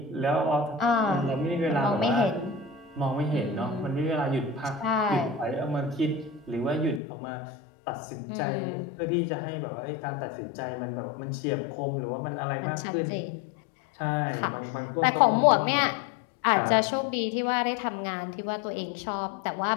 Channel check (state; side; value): drops out; right; at 7.0 s